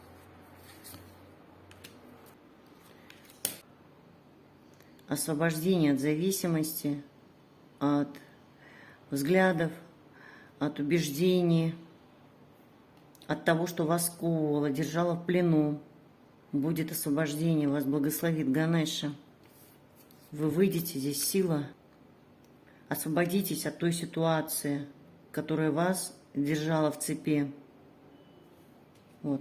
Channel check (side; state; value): both; identical; correlation 1.00